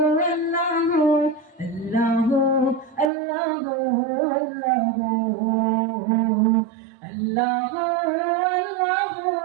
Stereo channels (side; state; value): left; drops out; at 3.1 s